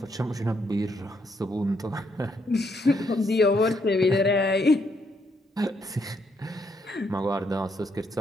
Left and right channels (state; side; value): normal; both; correlation 0.74